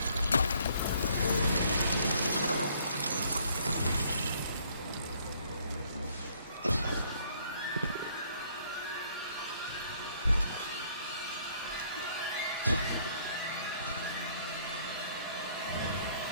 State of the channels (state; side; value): inverted; both; correlation -0.63